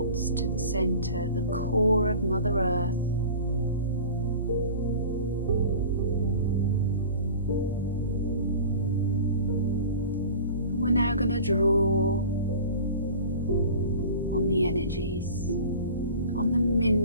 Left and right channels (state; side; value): inverted; both; correlation -0.39